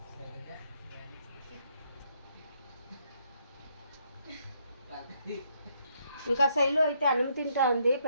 ఇంకా శైలు అయితే అన్నం తింటా ఉంది,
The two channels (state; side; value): inverted; both; correlation -0.72